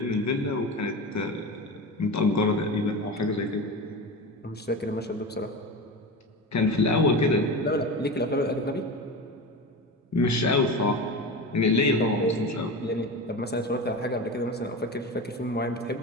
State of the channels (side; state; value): both; normal; correlation 0.26